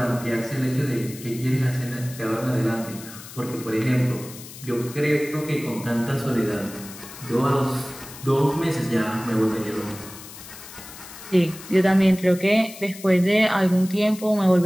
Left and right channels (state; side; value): noise; left; hiss, 15 dB below the sound